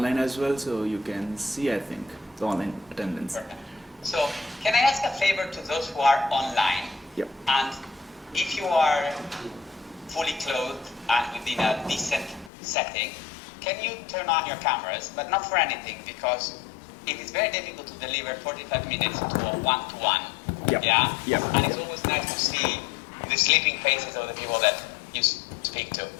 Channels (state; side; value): drops out; right; at 12.5 s